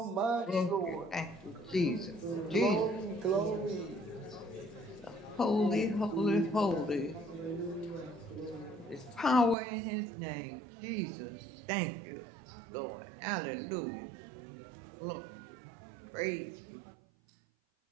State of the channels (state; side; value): drops out; left; at 9.6 s